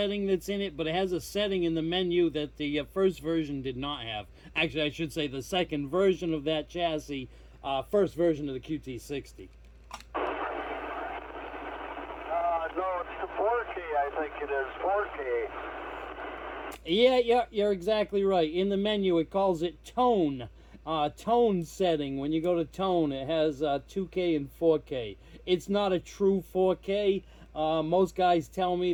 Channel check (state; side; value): identical; both; correlation 1.00